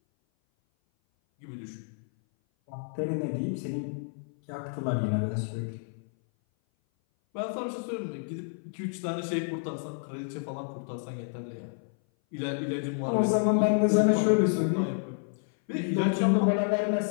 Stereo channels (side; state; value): right; silent; 57 dB below the other